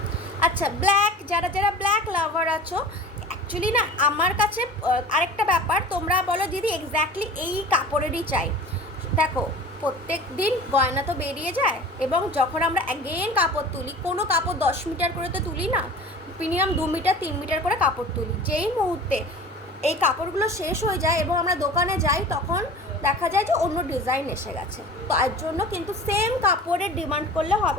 আচ্ছা, ব্ল্যাক, যারা যারা ব্ল্যাক লাভার আছো, অ্যাকচুয়ালি না আমার কাছে আরেকটা ব্যাপার, তোমরা বলো দিদি এক্স্যাক্টলি এই কাপড়েরই চাই। দেখো, প্রত্যেক দিন গয়না তো বেরিয়ে যায় এবং যখন আমরা অ্যাগেন কাপড় তুলি, কোনো কাপড় 10 মিটার করে তো তুলি না, মিনিমাম 2 মিটার 3 মিটার করে কাপড় তুলি। যেই মুহূর্তে এই কাপড়গুলো শেষ হয়ে যায় এবং আমরা দোকানে যাই, তখন দেখা যায় যে অন্য ডিজাইন এসে গেছে। তো এর জন্য কিন্তু সেম কাপড়ের ডিমান্ড করলে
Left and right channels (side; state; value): both; normal; correlation 0.39